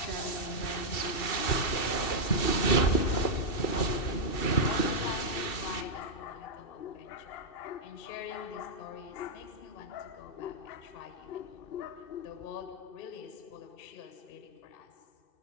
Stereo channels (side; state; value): right; late; 2.6 ms